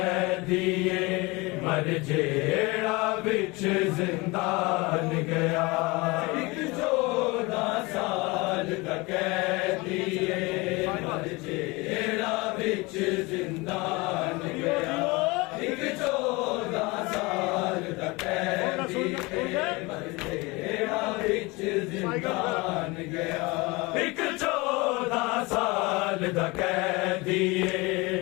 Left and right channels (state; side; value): quieter; right; 24.6 dB